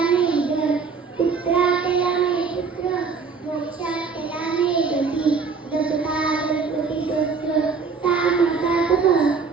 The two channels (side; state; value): left; quieter; 5.2 dB